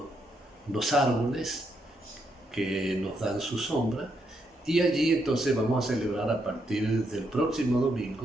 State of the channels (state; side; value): normal; both; correlation 0.78